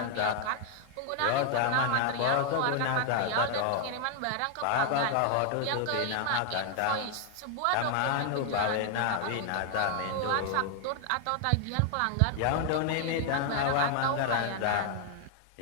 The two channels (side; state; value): both; different; correlation 0.00